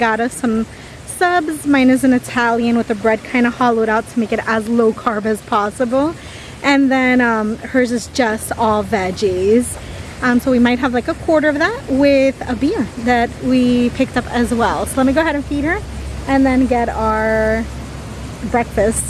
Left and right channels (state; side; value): identical; both; correlation 1.00